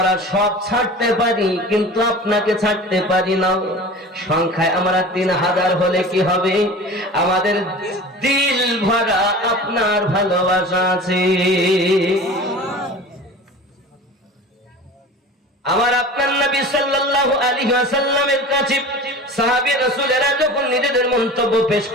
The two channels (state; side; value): normal; both; correlation 0.37